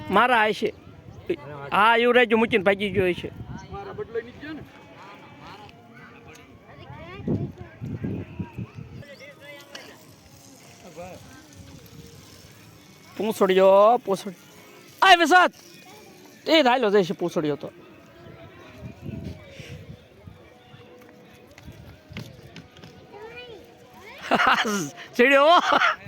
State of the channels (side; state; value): both; identical; correlation 1.00